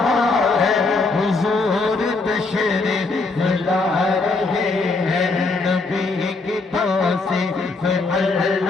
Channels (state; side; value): quieter; right; 3.7 dB